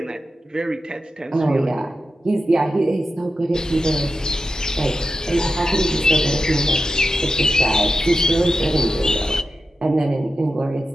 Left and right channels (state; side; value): normal; both; correlation 0.91